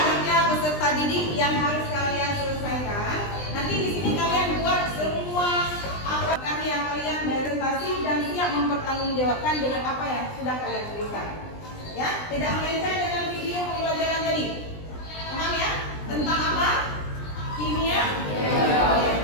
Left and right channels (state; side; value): late; right; 20 ms